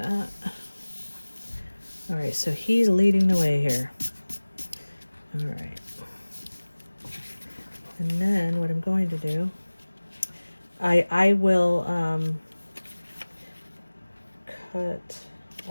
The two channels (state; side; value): inverted; both; correlation -1.00